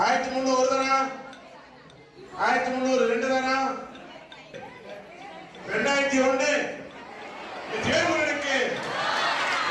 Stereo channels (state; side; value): identical; both; correlation 1.00